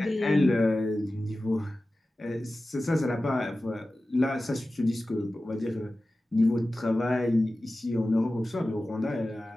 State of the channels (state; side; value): normal; both; correlation 0.95